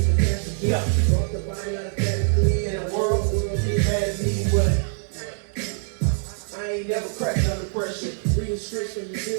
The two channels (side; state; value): left; silent; digital silence